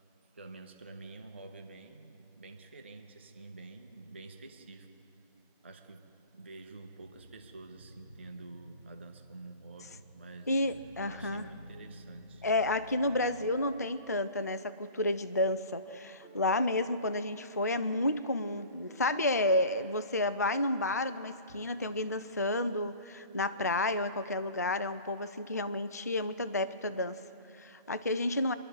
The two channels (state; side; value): inverted; both; correlation -0.42